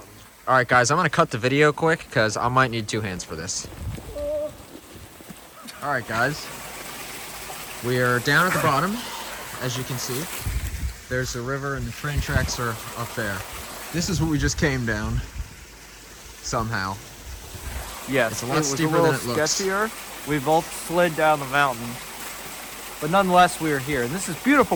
All right, guys, I'm going to cut the video quick because I might need two hands for this. All right, guys. We are down at the bottom, as you can see. There's the river and the train tracks are up there. This is what we just came down, somehow. Yes, it's a lot steeper than it looks. Sketchier. We both slid down the mountain. But nonetheless, we are here. And this is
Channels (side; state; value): both; identical; correlation 1.00